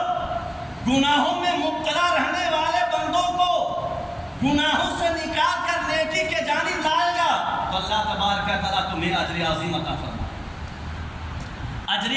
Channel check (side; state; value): both; identical; correlation 1.00